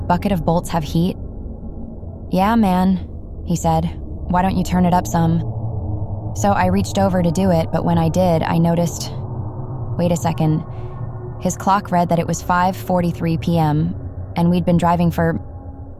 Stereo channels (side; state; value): both; identical; correlation 1.00